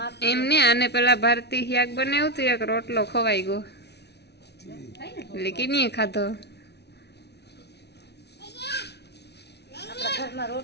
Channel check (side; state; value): right; late; 0.49 ms